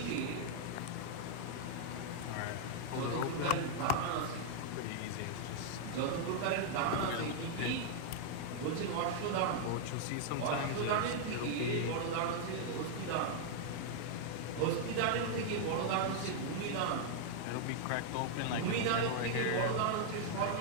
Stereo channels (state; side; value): different; both; correlation 0.00